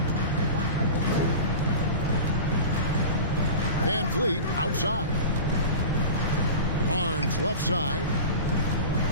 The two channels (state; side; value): inverted; both; correlation -0.32